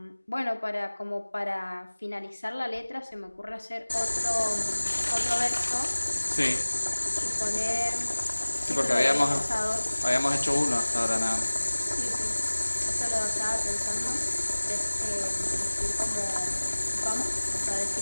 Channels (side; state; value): both; inverted; correlation -1.00